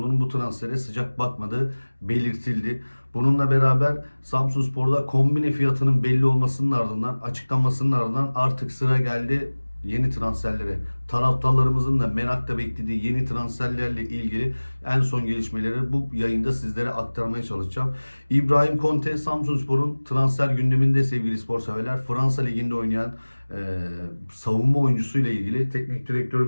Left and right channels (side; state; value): both; inverted; correlation -1.00